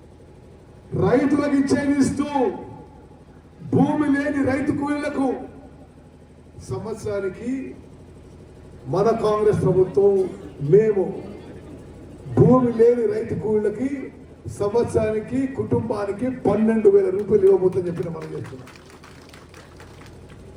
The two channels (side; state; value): both; identical; correlation 1.00